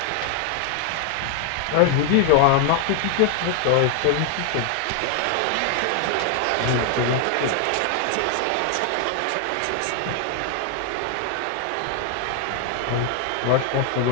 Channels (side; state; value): both; different; correlation 0.00